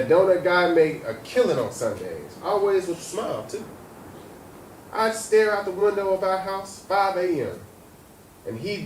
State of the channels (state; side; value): identical; both; correlation 1.00